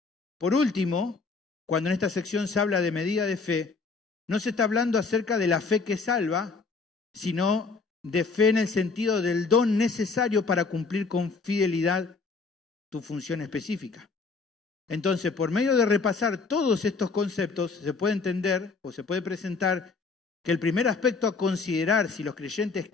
Por último, cuando en esta sección se habla de medida de fe, no se está hablando acerca de la fe que salva, sino de fe en el sentido del don necesario para cumplir con fidelidad tu función específica. Entonces, por medio de repasar todos estos conceptos, se puede entender o se puede presentar que el primer aspecto a considerar si los creyentes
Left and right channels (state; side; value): quieter; right; 4.4 dB